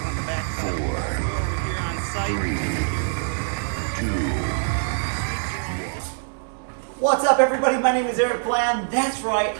4, 3, 2. What's up, everybody? My name is Eric Bland. That's right.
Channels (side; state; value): left; silent; digital silence